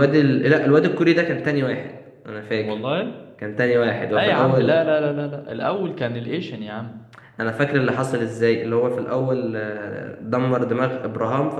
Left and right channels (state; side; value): identical; both; correlation 1.00